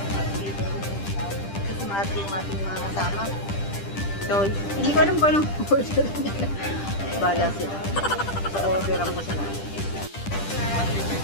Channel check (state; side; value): late; right; 10 ms